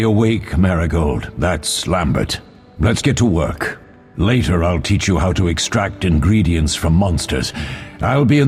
awake, Marigold." That's Lambert. Let's get to work. Later I'll teach you how to extract ingredients from monsters. I'll be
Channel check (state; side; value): identical; both; correlation 1.00